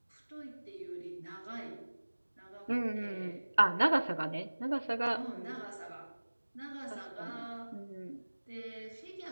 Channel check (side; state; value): both; inverted; correlation -1.00